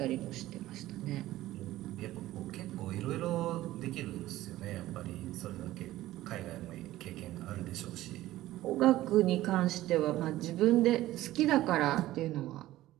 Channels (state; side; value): quieter; left; 15.6 dB